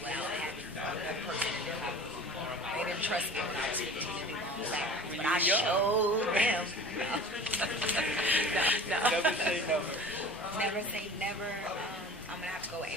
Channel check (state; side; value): normal; both; correlation 0.41